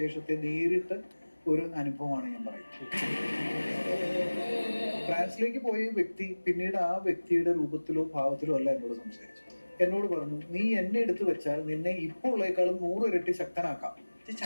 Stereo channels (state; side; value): inverted; both; correlation -1.00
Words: നേരിട്ട് ഒരു അനുഭവമാണ് ഞാൻ പറയുന്നത്. ഫ്രാൻസിലേക്ക് പോയ വ്യക്തി പിന്നീട് ആ വ്യക്തിയുടെ രൂപത്തിലോ ഭാവത്തിലോ അല്ല എന്നോട് സംസാരിച്ചു. എന്നോട് പറഞ്ഞു, നീ എന്നെ എടുത്തു വെച്ചാൽ നിന്നെ ഇപ്പോൾ ഉള്ളേക്കാളും 100 ഇരട്ടി ശക്തനാക്കാം.